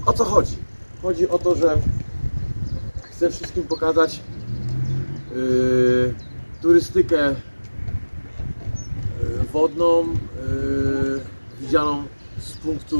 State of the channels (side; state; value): both; inverted; correlation -1.00